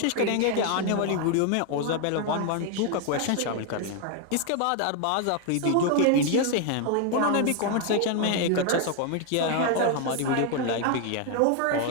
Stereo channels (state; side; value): different; both; correlation 0.01